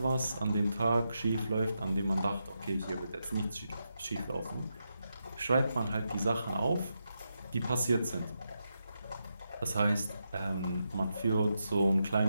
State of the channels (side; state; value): both; inverted; correlation -0.86